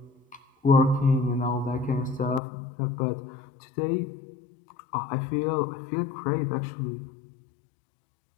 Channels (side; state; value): right; drops out; at 2.4 s